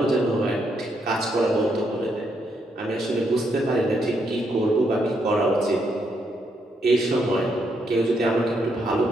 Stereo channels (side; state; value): both; normal; correlation 0.77